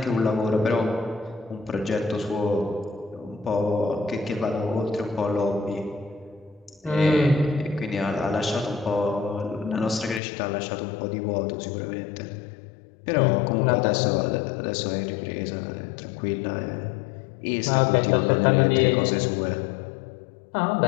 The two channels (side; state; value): right; drops out; at 10.2 s